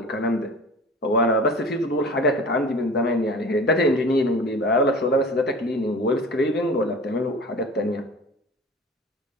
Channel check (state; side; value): normal; both; correlation 0.39